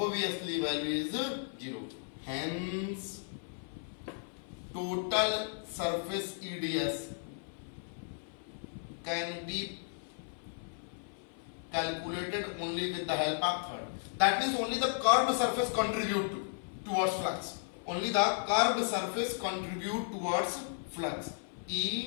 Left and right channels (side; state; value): right; silent; 55 dB below the other